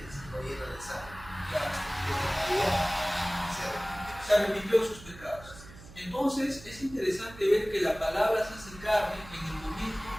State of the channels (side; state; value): right; noise; hum, 18 dB below the sound